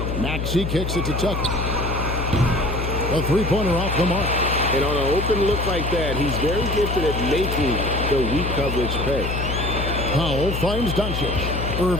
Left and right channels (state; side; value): noise; left; hum, 3 dB below the sound